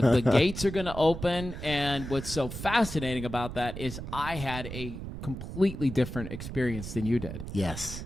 gates are going to open, and what's so fascinating about that is I had a completely different experience than you did. Yes.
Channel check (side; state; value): right; noise; rumble, 8 dB below the sound